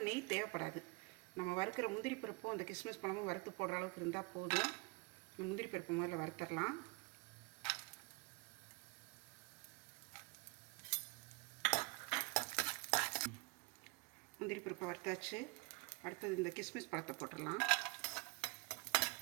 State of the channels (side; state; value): left; quieter; 27.0 dB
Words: நெய் தேவைப்படாது. நம்ம வறுக்கிற முந்திரி பருப்பும் அந்த கிஸ்மிஸ் பழமும் வறுத்து போடுற அளவுக்கு இருந்தால் போதும். முந்திரி பருப்பு முதல்ல வறுத்துடலாம். முந்திரி பருப்பை வறுத்தாச்சு. அடுத்தது இந்த கிஸ்மிஸ் பழத்தை போட்டுடலாம்.